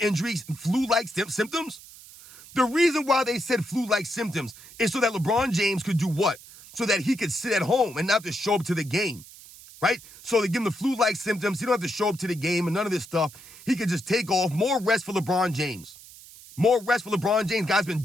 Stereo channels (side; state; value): right; noise; hiss, 19 dB below the sound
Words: flu-like symptoms. The reason why they said flu-like symptoms is so that LeBron James could do what? So that he could sit at home and not have to show up to the game, right? So they give him the flu-like symptoms. He don't have to show up to the game and none of this stuff. He could just take off. More rest for LeBron James. More rest for LeBron James. Guy's been